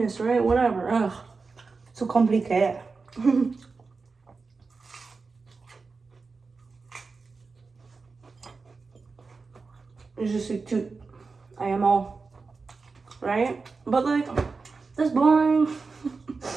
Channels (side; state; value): left; quieter; 4.4 dB